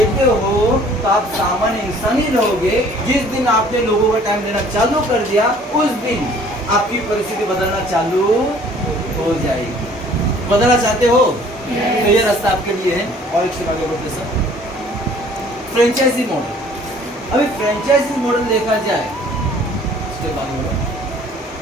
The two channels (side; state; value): both; normal; correlation 0.54